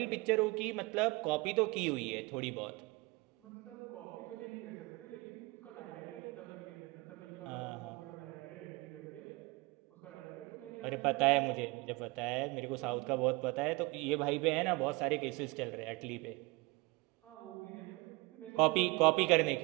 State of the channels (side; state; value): left; quieter; 24.8 dB